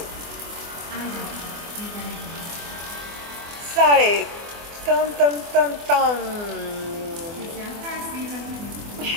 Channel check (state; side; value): late; left; 24 ms